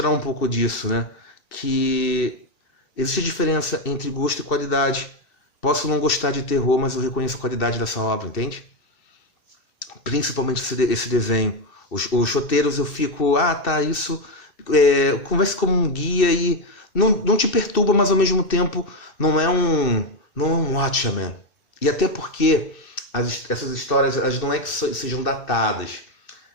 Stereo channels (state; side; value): late; right; 2.6 ms